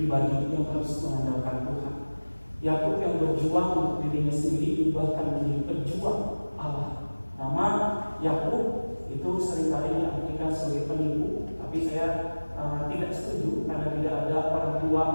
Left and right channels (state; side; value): inverted; both; correlation -1.00